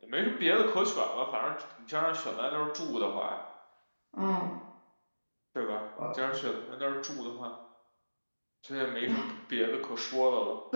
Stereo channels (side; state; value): both; inverted; correlation -1.00